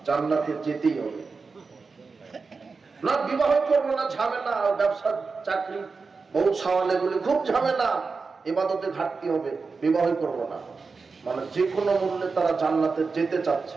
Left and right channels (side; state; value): left; quieter; 4.5 dB